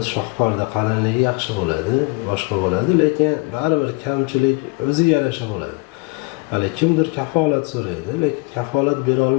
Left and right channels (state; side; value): quieter; right; 26.5 dB